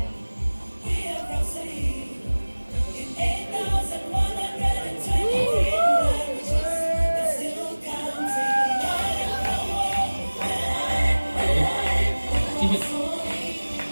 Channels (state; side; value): inverted; both; correlation -1.00